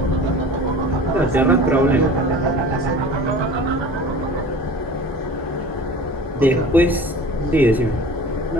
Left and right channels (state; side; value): normal; both; correlation 0.40